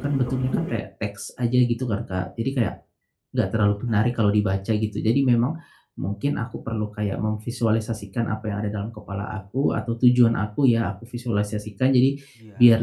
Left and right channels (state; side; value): identical; both; correlation 1.00